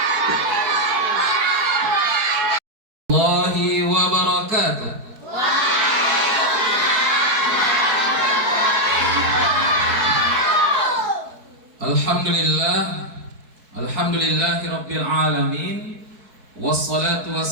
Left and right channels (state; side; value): late; left; 4.6 ms